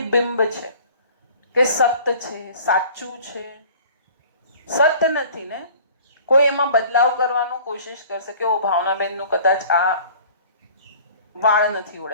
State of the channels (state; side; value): inverted; both; correlation -0.48